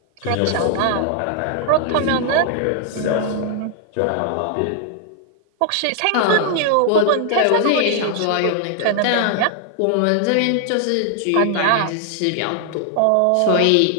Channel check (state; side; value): different; both; correlation 0.00